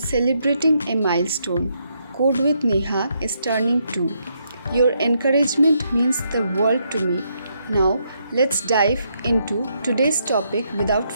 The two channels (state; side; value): inverted; both; correlation -0.76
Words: a milestone. Code with Neha is turning 2. Your encouragement means the world to me. Now let's dive into today's topic without